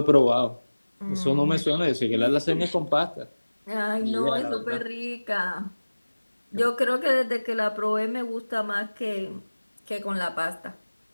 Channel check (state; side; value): inverted; both; correlation -1.00